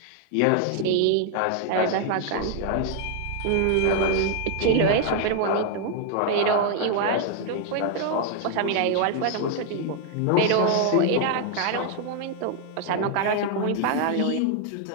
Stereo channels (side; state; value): both; different; correlation 0.00